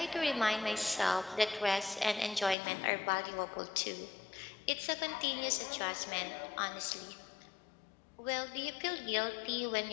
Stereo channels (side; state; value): right; drops out; at 2.6 s